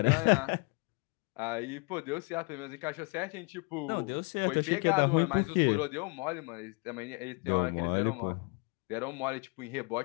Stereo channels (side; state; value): right; quieter; 32.3 dB